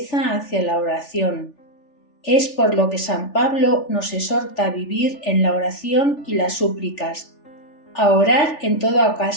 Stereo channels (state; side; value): late; right; 3.4 ms